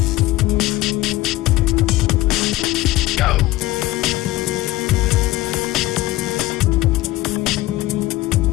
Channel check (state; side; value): quieter; right; 17.4 dB